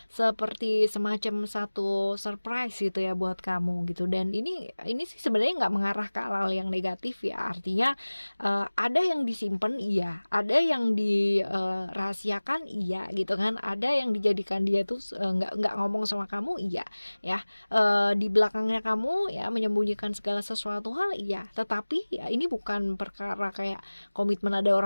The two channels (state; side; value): inverted; both; correlation -1.00